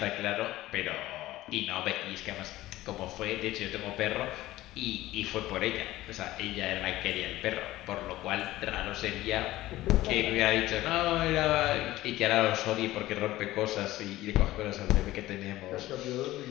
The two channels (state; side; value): quieter; right; 16.4 dB